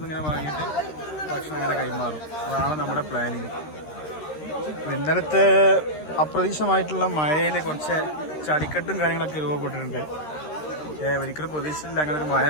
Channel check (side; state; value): right; late; 13 ms